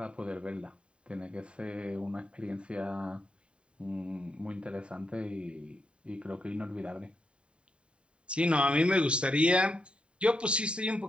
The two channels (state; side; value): late; left; 0.055 ms